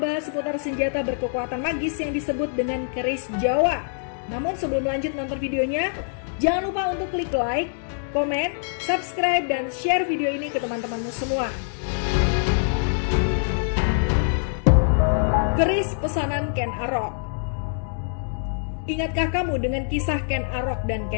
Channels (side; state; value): right; silent; digital silence